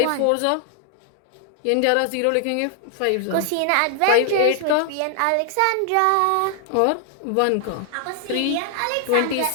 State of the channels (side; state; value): both; different; correlation 0.00